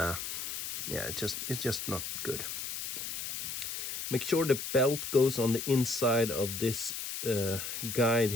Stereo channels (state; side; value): noise; left; hiss, 5 dB below the sound